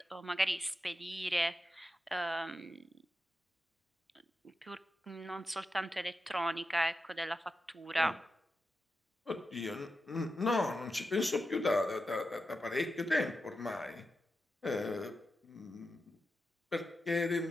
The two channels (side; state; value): both; normal; correlation 0.89